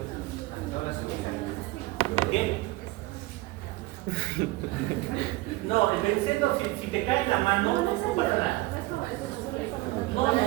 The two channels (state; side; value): quieter; left; 20.1 dB